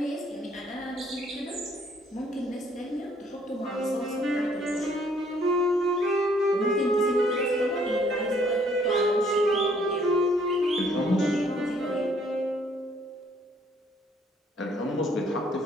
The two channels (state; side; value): normal; both; correlation 0.64